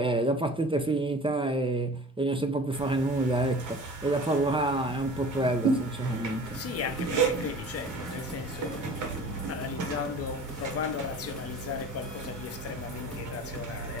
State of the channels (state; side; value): normal; both; correlation 0.42